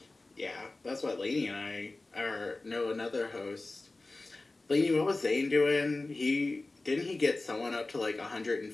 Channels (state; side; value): quieter; right; 3.1 dB